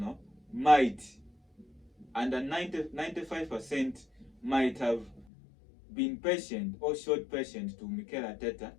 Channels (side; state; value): right; drops out; at 5.2 s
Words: might, under 95% might have been patient or showed patience to Mikel Arteta,